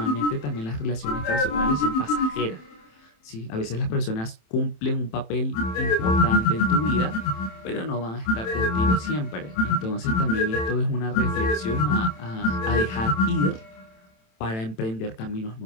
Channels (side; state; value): right; late; 27 ms